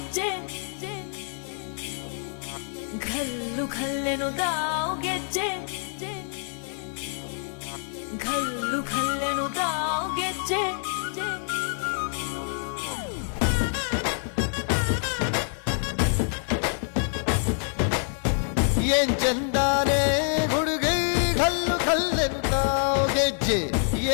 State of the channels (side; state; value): right; silent; 61 dB below the other